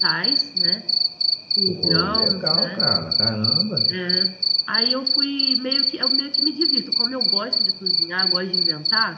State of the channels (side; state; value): both; identical; correlation 1.00